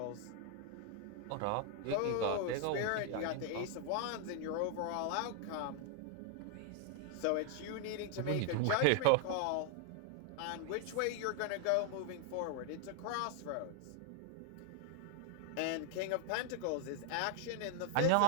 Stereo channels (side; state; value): both; different; correlation 0.00